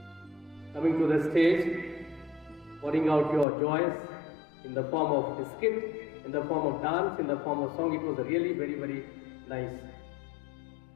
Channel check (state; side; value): drops out; right; at 3.5 s